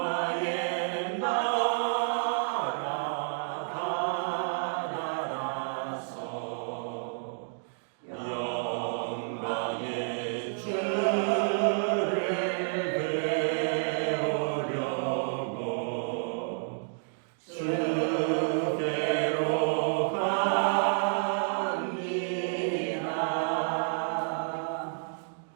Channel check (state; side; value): silent; left; digital silence